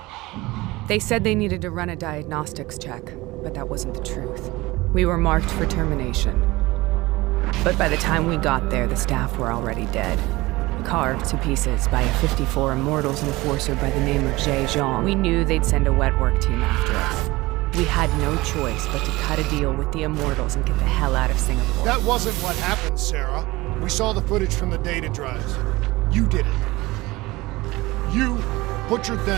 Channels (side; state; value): left; quieter; 20.6 dB